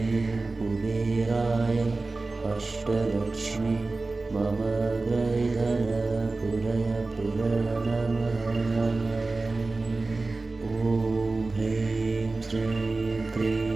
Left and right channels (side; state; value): left; quieter; 3.5 dB